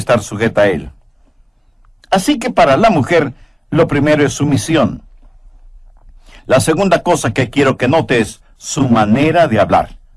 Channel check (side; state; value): both; identical; correlation 1.00